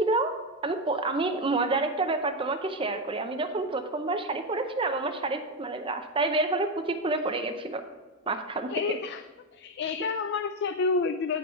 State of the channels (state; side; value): normal; both; correlation 0.09